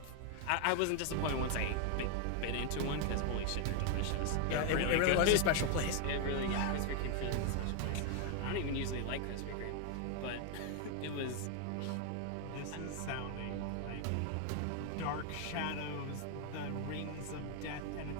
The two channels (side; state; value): both; different; correlation 0.01